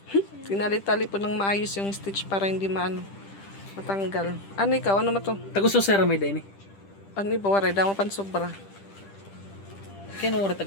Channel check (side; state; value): right; late; 10 ms